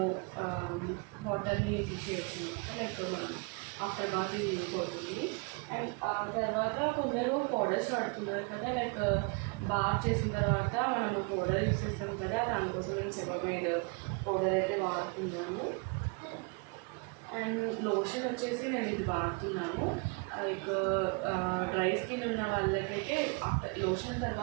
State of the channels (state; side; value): quieter; left; 32.5 dB